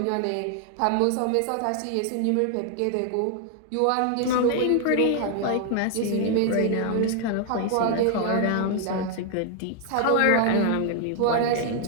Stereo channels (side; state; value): both; different; correlation 0.00